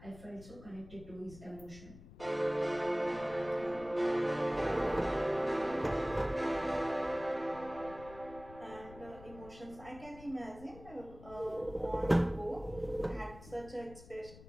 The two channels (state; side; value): noise; left; rumble, 18 dB below the sound